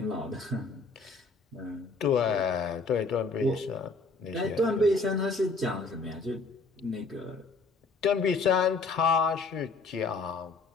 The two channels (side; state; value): right; quieter; 3.9 dB